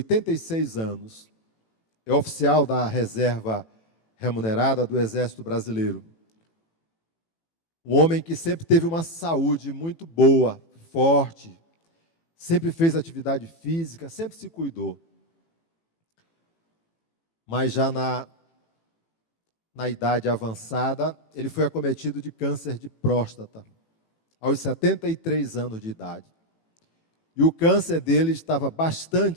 anos, é oficial da reserva remunerada do Exército Brasileiro. Um homem que sempre teve uma saúde muito boa, forte, sempre fez atividade física, sempre se cuidou. Mas já na idade avançada, ele foi acometido de câncer de próstata, aos 73 anos de idade. E o câncer dele estava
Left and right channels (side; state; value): right; late; 18 ms